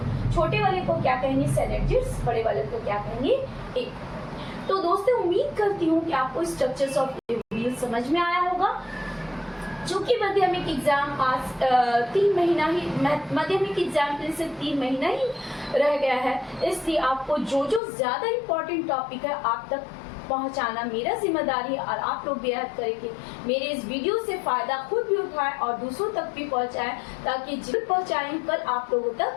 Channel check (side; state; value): right; drops out; at 17.8 s